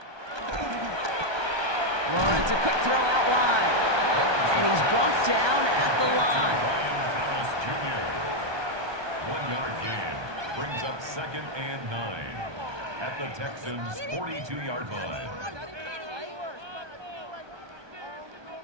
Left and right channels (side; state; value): left; late; 1.2 ms